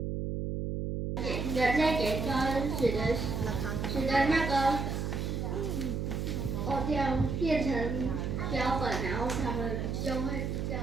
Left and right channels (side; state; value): right; noise; hum, 2 dB below the sound